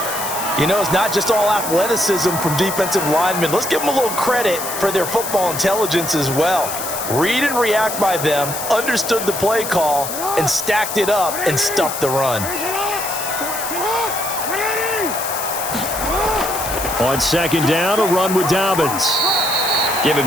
It's not just all athleticism from defensive linemen. Let's give them a little credit for their football intelligence as well. Read and react by them, understood the play call, and stacked it up and stuffed the run. On 2nd down, a run with Dobbins. Give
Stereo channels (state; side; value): noise; left; hiss, 6 dB below the sound